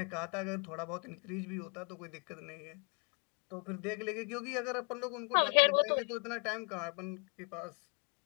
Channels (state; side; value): quieter; right; 37.4 dB